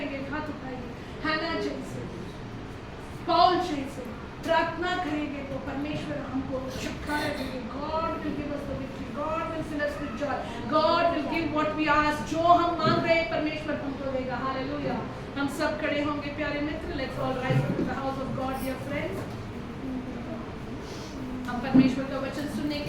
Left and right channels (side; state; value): both; identical; correlation 1.00